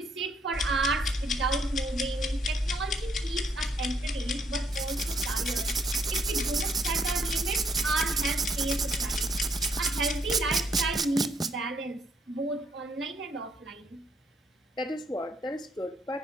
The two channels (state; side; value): normal; both; correlation 0.70